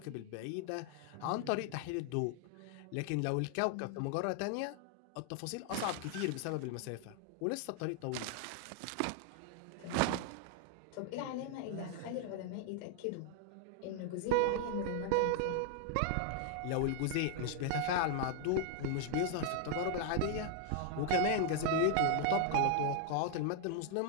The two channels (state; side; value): different; both; correlation 0.00